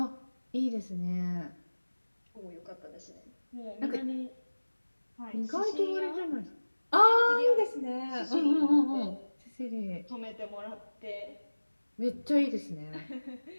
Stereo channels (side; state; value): both; inverted; correlation -1.00